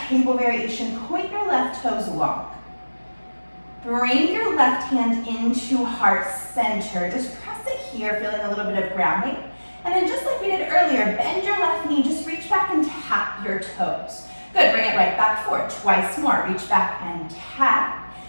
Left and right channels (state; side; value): inverted; both; correlation -1.00